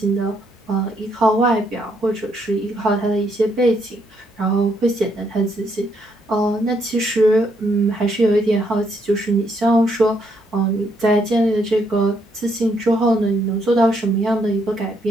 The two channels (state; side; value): normal; both; correlation 0.74